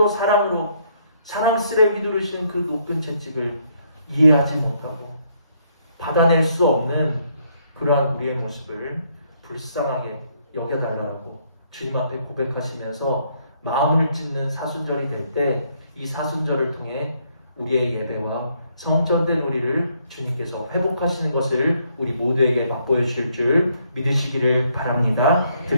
사랑으로 사랑스레 휘두르신 그 높은 채찍을 이해하지 못하고 받아낼 수 없는 그러한 우리의 모습을 불쌍하게 여겨달라고 주님 앞에 고백하시면서 마음을 찢는 사순절이 될 때 이 사순절을 통해 우리의 예배와 성전된 우리를 주님께서 회복하시는 것을 우리 모두에게 맛보여 주실 줄 믿으시기를 바랍니다.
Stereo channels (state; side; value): inverted; both; correlation -0.70